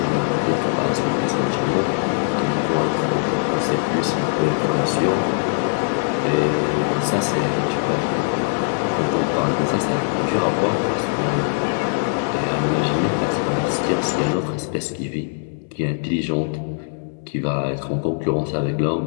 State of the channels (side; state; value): right; silent; 65 dB below the other